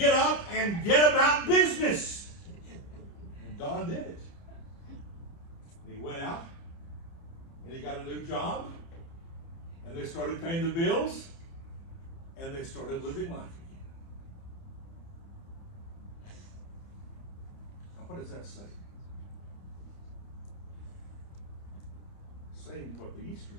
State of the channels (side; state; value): right; late; 30 ms